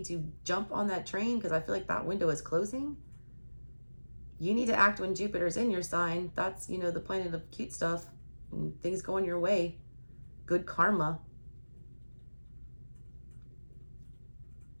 to jump on that train because I feel like that window is closing. You need to act when Jupiter's in your sign. That's, you know, the planet of cute stuff and things going your way. Good karma.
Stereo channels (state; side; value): inverted; both; correlation -1.00